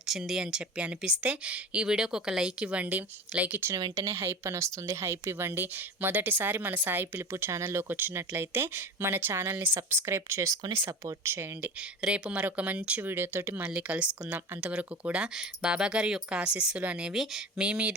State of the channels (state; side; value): normal; both; correlation 0.31